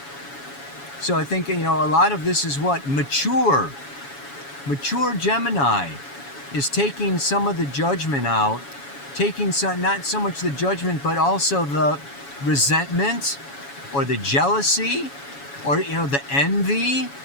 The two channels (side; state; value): right; late; 7.1 ms